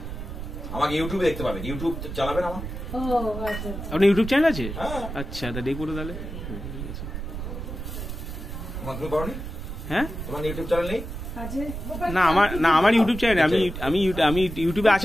আমাকে ইউটিউবে দেখতে পাবেন ইউটিউব চালাবেন আমার ও আচ্ছা আপনার ইউটিউব চ্যানেল আছে হ্যাঁ আচ্ছা তা দেখবো তো তাহলে ঠিক আছে তুমি করনি হ্যাঁ তোমার ইউটিউব চ্যানেল নেই আছে না আমার ইউটিউব চ্যানেল আমি ইউটিউবে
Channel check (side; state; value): right; noise; rumble, 7 dB below the sound